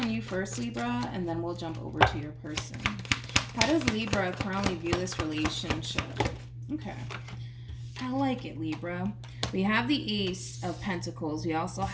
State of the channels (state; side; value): identical; both; correlation 1.00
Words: you first, Libra, and then we'll jump over to your person. How does Libra currently view this relationship? Okay. I like it, Libra. We have the Ace of Pentacles. We also